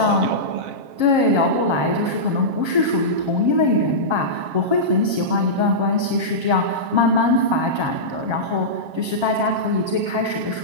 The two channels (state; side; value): late; left; 7.4 ms